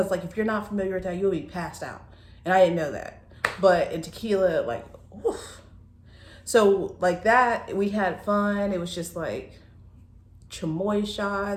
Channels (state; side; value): identical; both; correlation 1.00